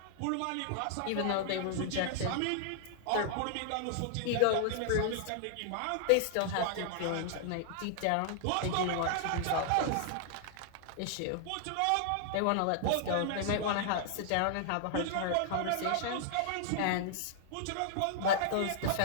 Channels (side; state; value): both; different; correlation -0.01